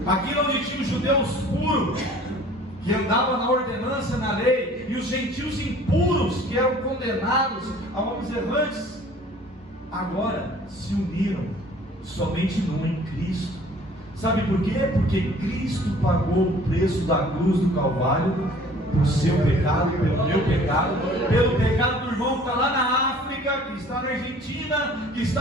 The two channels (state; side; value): normal; both; correlation 0.51